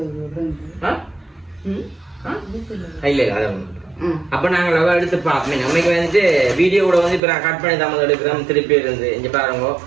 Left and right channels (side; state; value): left; drops out; at 7.2 s